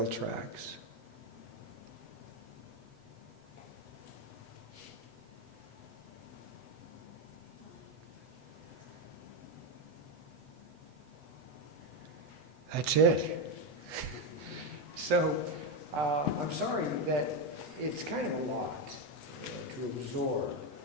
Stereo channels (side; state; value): left; late; 8.1 ms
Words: tracks. That's it. So I'm sorry that it's kind of a lot to absorb,